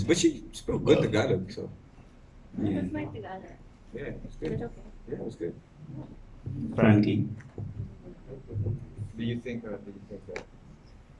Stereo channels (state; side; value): identical; both; correlation 1.00